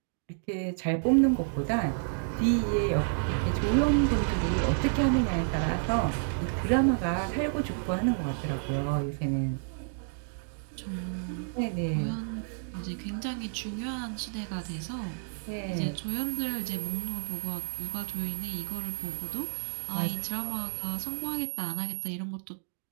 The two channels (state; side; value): silent; left; digital silence